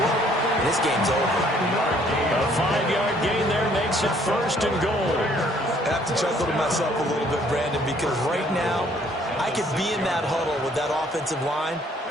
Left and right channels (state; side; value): normal; both; correlation 0.62